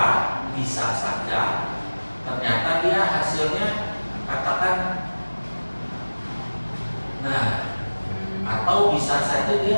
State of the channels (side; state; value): both; inverted; correlation -1.00